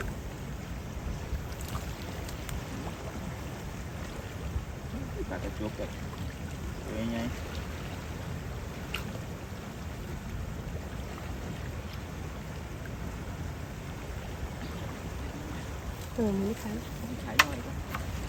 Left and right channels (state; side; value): identical; both; correlation 1.00